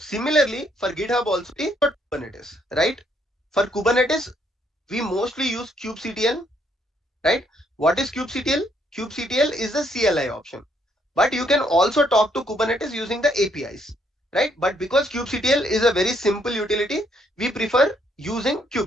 for GitHub also, Kubernetes, right? For Kubernetes, we mostly use kubectl, right? What is kubectl? Kubectl is the CLI option, but you can also talk to Kubernetes using the APIs, right? But because kubectl is a very simple utility, we prefer using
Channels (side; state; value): both; normal; correlation 0.71